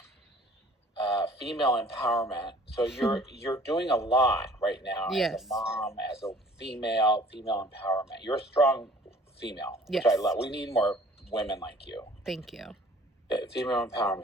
female empowerment. So you're doing a lot right now as a mom, as a female empowerment. You're a strong female, which I love. We need more women like you. Thank you. Female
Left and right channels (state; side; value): normal; both; correlation 0.52